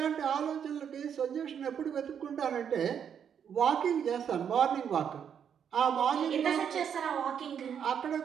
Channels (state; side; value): quieter; left; 8.1 dB